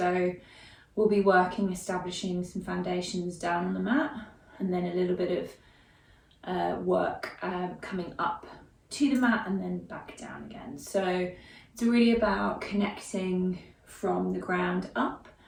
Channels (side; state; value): both; identical; correlation 1.00